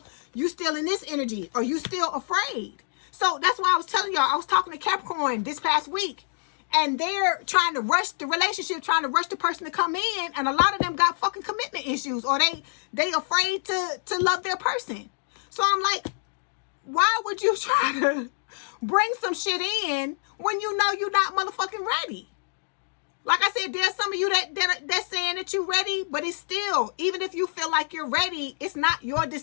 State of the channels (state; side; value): silent; right; digital silence